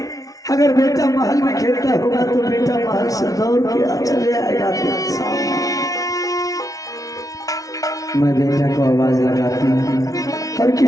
अगर बेटा महल में खेलता होगा तो बेटा महल से दौड़ के चले आएगा। मैं बेटा को आवाज लगाती हूँ और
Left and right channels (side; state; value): right; late; 0.17 ms